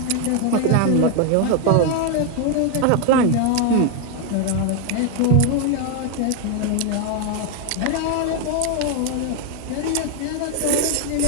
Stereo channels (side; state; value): both; different; correlation 0.01